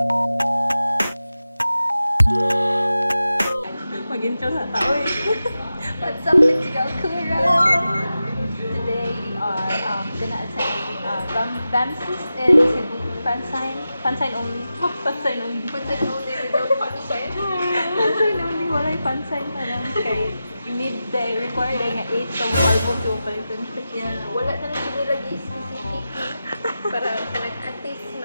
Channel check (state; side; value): inverted; both; correlation -0.93